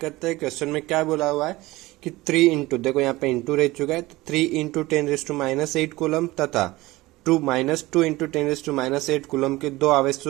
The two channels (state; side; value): quieter; left; 19.5 dB